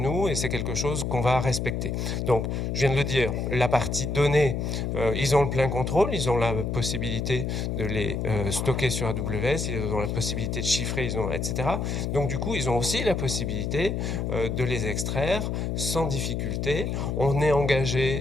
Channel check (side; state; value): left; noise; hum, 1 dB below the sound